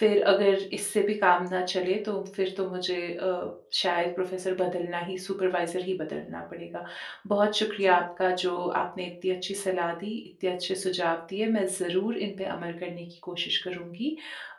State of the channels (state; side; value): identical; both; correlation 1.00